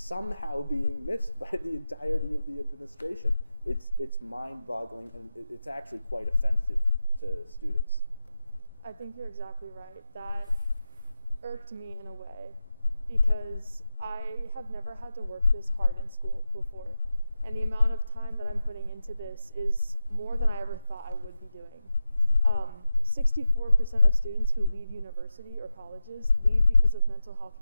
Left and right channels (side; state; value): both; inverted; correlation -0.93